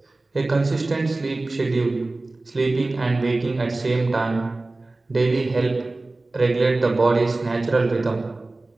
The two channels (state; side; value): quieter; left; 3.1 dB